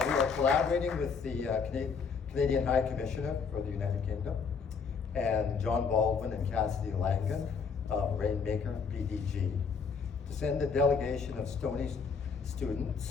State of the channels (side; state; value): right; quieter; 5.7 dB